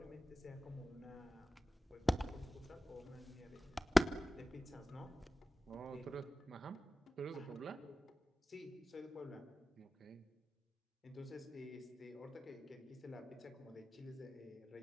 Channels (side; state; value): both; normal; correlation 0.96